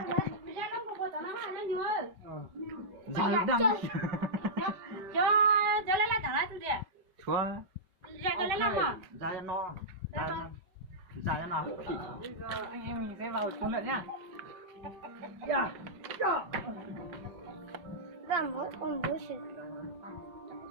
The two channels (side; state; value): left; late; 5.3 ms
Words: Ra đang. Cho lấy lại thẳng lại tôi đi. Chúa. Ra cho lấy lại mà. Ra cho nó. Ra cho nào. Bây giờ anh em mình sẽ vào xuống lượn nhá.